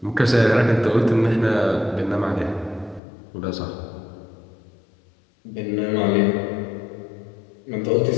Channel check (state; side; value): drops out; right; at 3.0 s